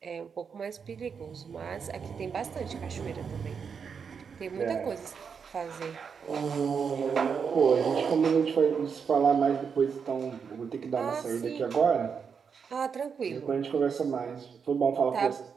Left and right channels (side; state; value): left; quieter; 6.3 dB